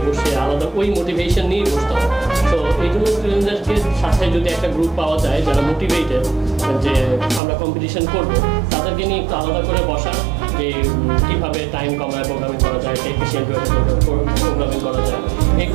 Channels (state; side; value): drops out; left; at 7.4 s